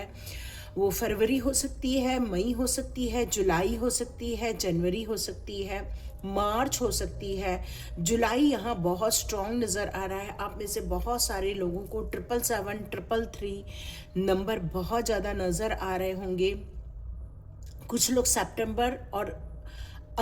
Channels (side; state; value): both; identical; correlation 1.00